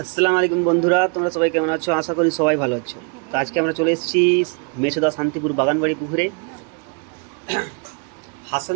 আসসালামু আলাইকুম বন্ধুরা, তোমরা সবাই কেমন আছো? আশা করি সবাই ভালো আছো। তো আজকে আমরা চলে এসেছি মেচেদা শান্তিপুর বাগানবাড়ি পুকুরে।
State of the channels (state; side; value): quieter; left; 36.8 dB